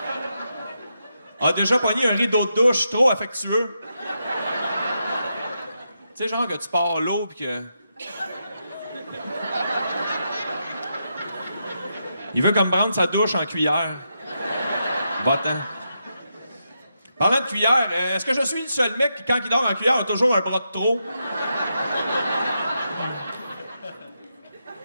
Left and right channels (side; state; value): both; inverted; correlation -0.84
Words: a déjà pogné un rideau de douche trop affectueux? Tu sais, genre que tu pars l'eau pis que... Il veut comme prendre sa douche en cuillère. Va-t'en. Parlant de cuillère, est-ce que je suis le seul mec qui, quand il dort en cuillère, a toujours un bras de trop?